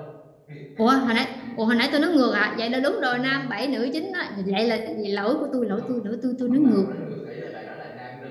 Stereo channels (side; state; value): both; identical; correlation 1.00